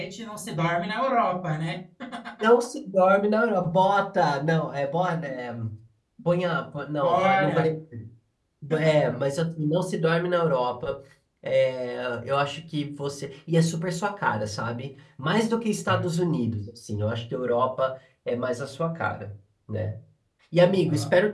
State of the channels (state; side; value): identical; both; correlation 1.00